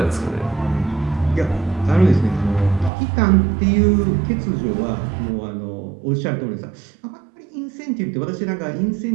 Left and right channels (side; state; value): left; drops out; at 2.9 s